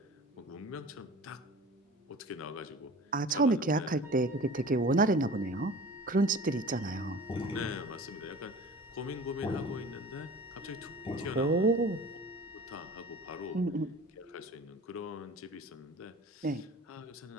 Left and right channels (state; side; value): normal; both; correlation 0.41